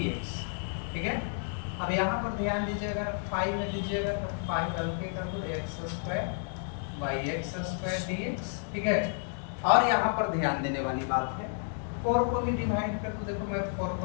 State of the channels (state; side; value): silent; right; 57 dB below the other